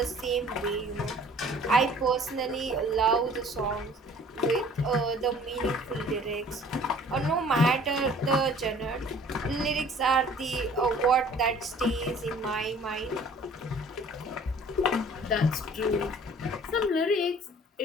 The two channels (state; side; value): normal; both; correlation 0.52